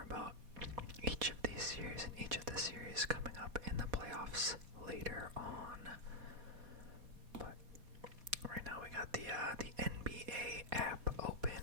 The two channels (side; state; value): left; late; 4.1 ms